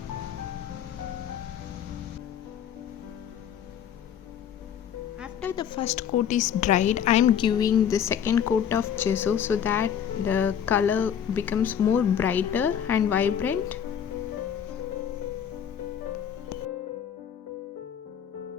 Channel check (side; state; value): right; quieter; 8.7 dB